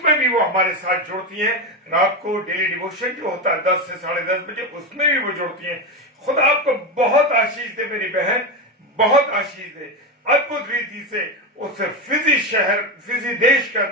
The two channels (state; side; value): normal; both; correlation 0.15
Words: भी वो हमारे साथ जुड़ती हैं। रात को डेली डिवोशन जो होता है 10 से 10:30 बजे, उसमें भी वो जुड़ती हैं। खुदा आपको बहुत आशीष दे मेरी बहन, बहुत आशीष दे। अद्भुत रीति से उस फिजी देश के